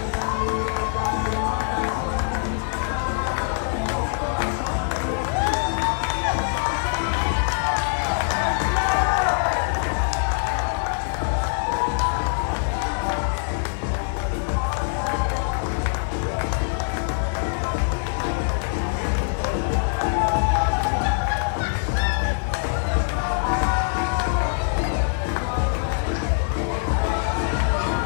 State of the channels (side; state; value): right; silent; 63 dB below the other